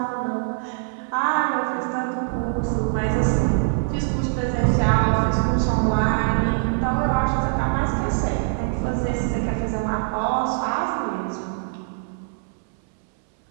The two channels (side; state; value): left; silent; 63 dB below the other